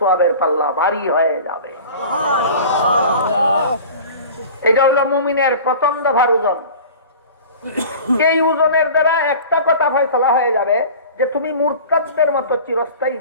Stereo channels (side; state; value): both; inverted; correlation -0.39